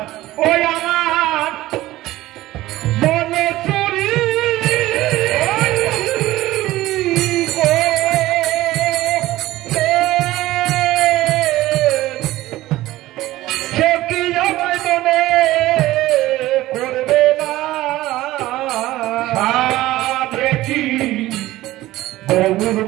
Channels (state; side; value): quieter; left; 16.5 dB